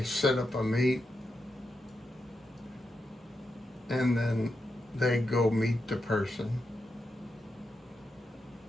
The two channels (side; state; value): both; normal; correlation 0.86